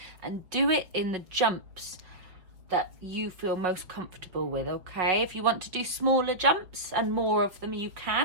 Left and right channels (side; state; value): left; late; 5.5 ms